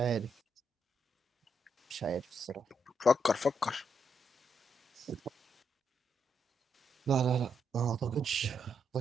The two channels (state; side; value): normal; both; correlation 0.78